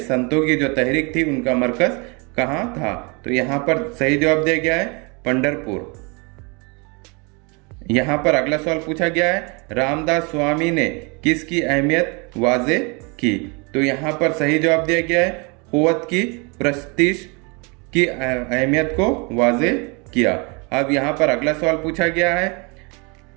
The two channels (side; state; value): left; quieter; 30.8 dB